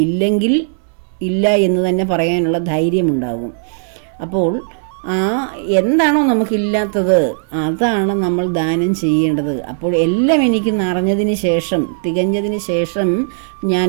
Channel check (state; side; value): silent; left; digital silence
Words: ഇല്ലെങ്കിൽ ഇല്ല എന്ന് തന്നെ പറയാനുള്ള ധൈര്യമുണ്ടാകും. അപ്പോൾ എന്താണോ നമുക്കില്ലാത്തത് അതാണ് നമ്മൾ ദാനം ചെയ്യേണ്ടത്. അപ്പോൾ എല്ലാം എനിക്ക് നിറഞ്ഞതിന് ശേഷം, തികഞ്ഞതിന് ശേഷം ഞാൻ